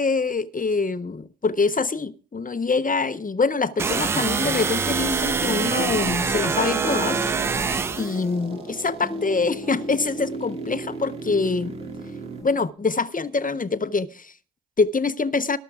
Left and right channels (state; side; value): normal; both; correlation 0.37